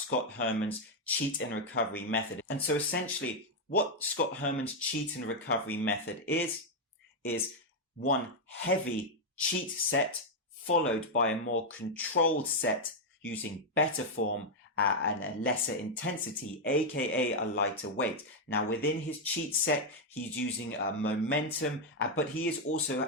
Herman's cheat and recovery method. And so essentially what Scott Herman's cheat and recovery method is one heavy cheat set followed by a more controlled set using better form and a lesser intensity, aka a lighter weight. Now within his cheat set, he's using momentum, but he is also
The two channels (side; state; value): both; normal; correlation 0.00